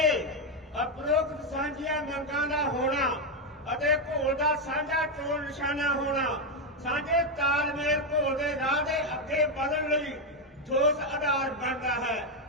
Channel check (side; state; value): both; normal; correlation 0.05